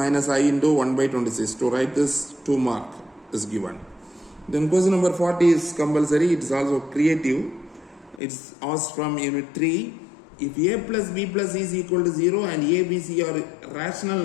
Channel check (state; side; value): drops out; right; at 8.2 s